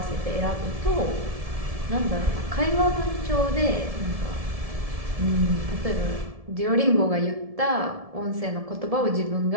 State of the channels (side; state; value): left; late; 1.7 ms